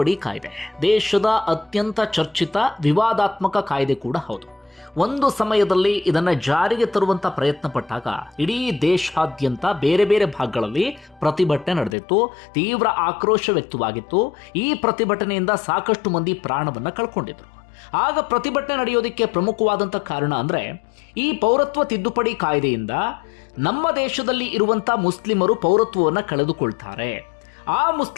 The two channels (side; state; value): right; drops out; at 12.0 s